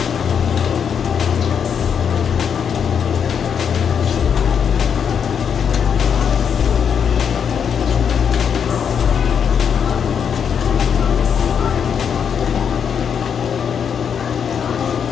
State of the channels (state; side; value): quieter; right; 7.4 dB